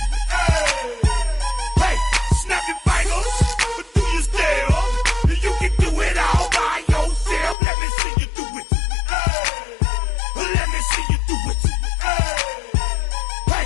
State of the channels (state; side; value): drops out; right; at 7.6 s